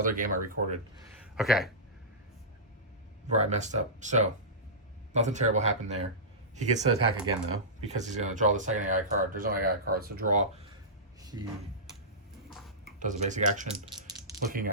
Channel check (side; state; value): both; normal; correlation -0.17